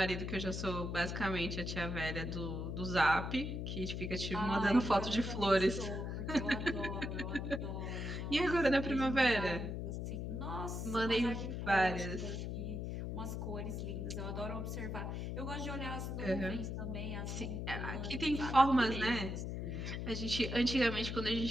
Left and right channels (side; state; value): left; noise; hum, 4 dB below the sound